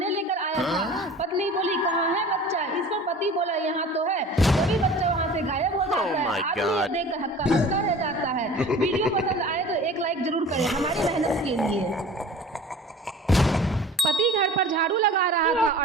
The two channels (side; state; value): both; normal; correlation 0.42